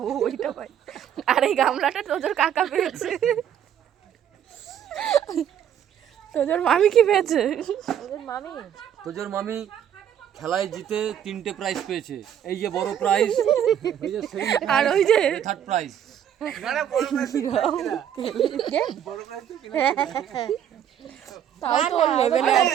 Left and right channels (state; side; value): quieter; left; 9.7 dB